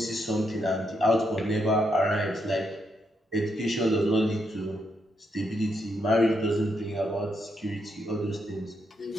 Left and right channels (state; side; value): normal; both; correlation 0.79